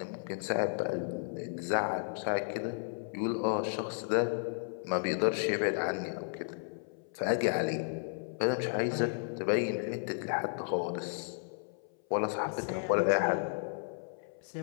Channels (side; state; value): right; silent; 55 dB below the other